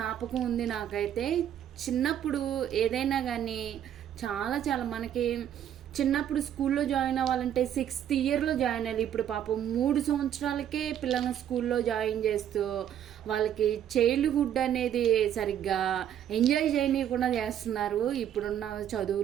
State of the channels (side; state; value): left; quieter; 10.1 dB